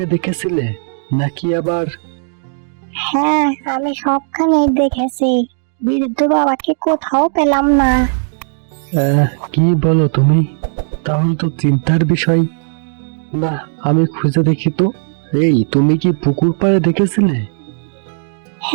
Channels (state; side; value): silent; left; digital silence